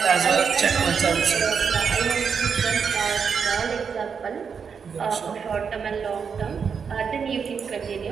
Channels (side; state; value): left; quieter; 6.3 dB